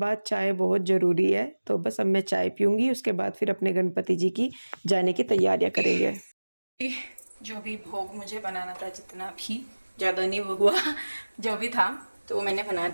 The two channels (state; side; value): inverted; both; correlation -1.00